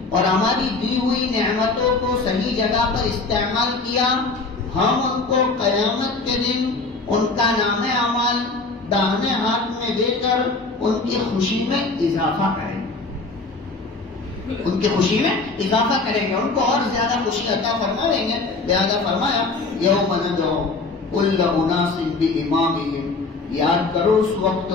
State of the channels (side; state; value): right; quieter; 3.7 dB